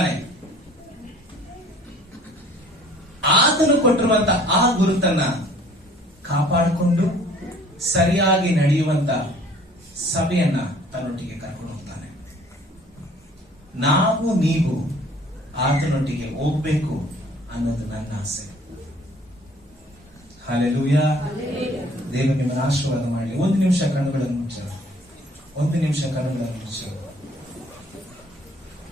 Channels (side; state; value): both; normal; correlation 0.54